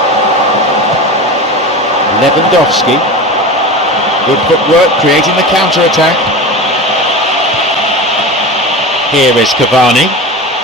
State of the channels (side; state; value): both; normal; correlation 0.29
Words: Lewandowski. Good footwork, creating the counter-attack. Here is Cavani.